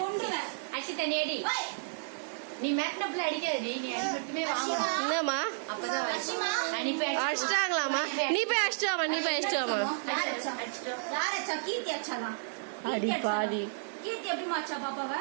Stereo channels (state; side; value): silent; left; digital silence